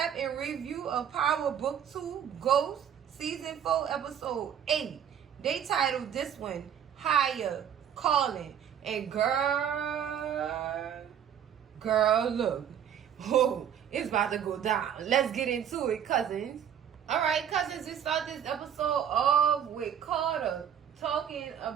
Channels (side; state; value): left; quieter; 9.0 dB